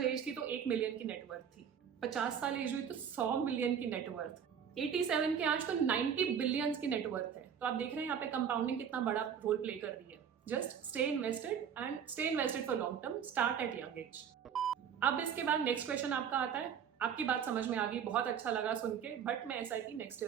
एज थी तो 1 मिलियन की नेटवर्थ थी। 50 साल एज हुई तो 100 मिलियन की नेटवर्थ। 87 के आज तो 90 बिलियंस की नेटवर्थ है। तो आप देख रहे हैं यहाँ पे कंपाउंडिंग कितना बड़ा रोल प्ले कर रही है। Just stay invested and stay invested for long term, start at young age. अब इसके बाद नेक्स्ट क्वेश्चन आपका आता है, आपकी बात समझ में आ गई, बहुत अच्छा लगा सुन के, बट मैं एसआईपी नेक्स्ट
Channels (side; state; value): left; quieter; 7.9 dB